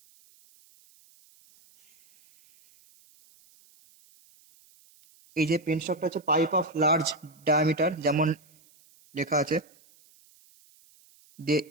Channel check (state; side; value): noise; right; hiss, 30 dB below the sound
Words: এই যে পেন স্টকটা হচ্ছে পাইপ অফ লার্জ ডায়ামিটার, যেমন লেখা আছে,